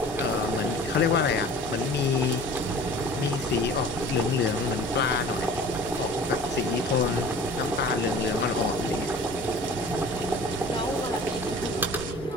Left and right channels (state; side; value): normal; both; correlation 0.44